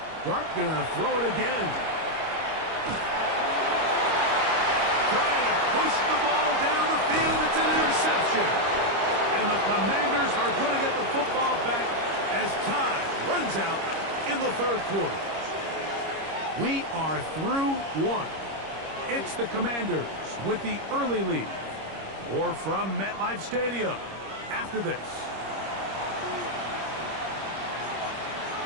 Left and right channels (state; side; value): late; left; 25 ms